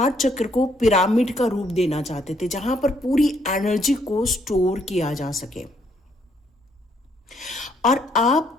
चक्र को पिरामिड का रूप देना चाहते थे, जहां पर पूरी एनर्जी को स्टोर किया जा सके और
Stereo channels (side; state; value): both; normal; correlation 0.70